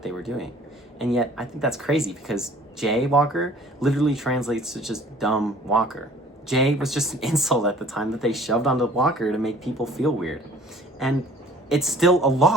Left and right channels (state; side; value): normal; both; correlation 0.52